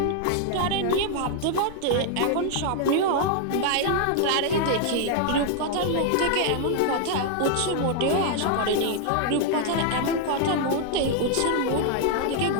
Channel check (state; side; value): different; both; correlation 0.00